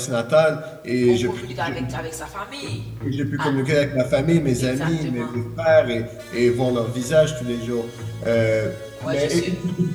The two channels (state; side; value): identical; both; correlation 1.00